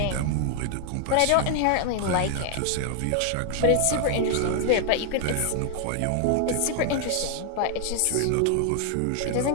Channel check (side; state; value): both; different; correlation 0.00